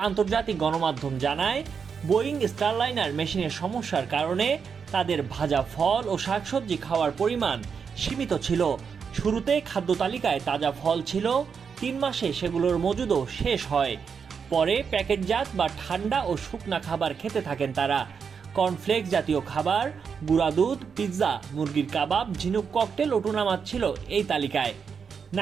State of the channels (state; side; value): quieter; left; 6.3 dB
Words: আন্তর্জাতিক গণমাধ্যম জানায়, বোয়িং স্টারলাইনার মেশিনের সমস্যার কারণে তাদের ভাজা ফল ও শাকসবজি খাওয়ার পরিমাণ সীমিত ছিল। শুরুতে খাদ্য তালিকায় তাজা ফল ছিল, ৩ মাসে সেগুলোর মজুদও শেষ হয়। পরে প্যাকেটজাত বা ঠান্ডা ও শুকনা খাবার খেতে থাকেন তারা। কর্নফ্লেক্স জাতীয় খাবার, গুঁড়া দুধ, পিৎজা, মুরগির কাবাব, ঝিনুক ককটেল ও টুনা মাছ ছিল এই তালিকায়।